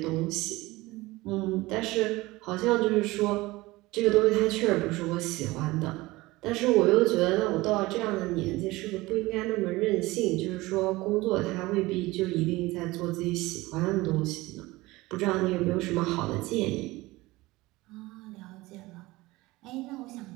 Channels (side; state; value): left; quieter; 20.3 dB